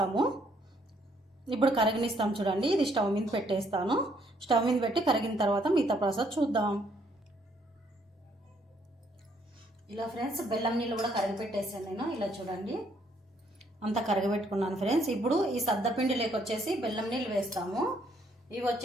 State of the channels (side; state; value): both; normal; correlation 0.68